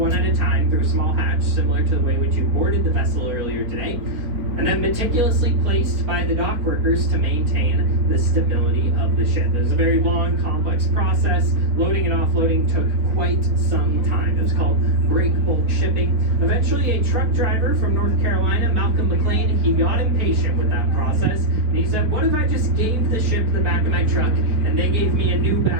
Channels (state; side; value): late; left; 4.2 ms